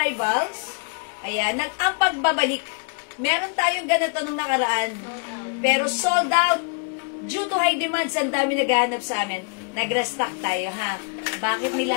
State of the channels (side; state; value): right; quieter; 37.6 dB